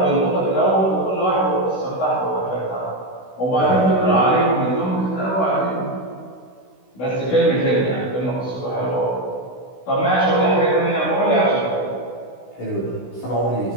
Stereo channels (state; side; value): late; right; 16 ms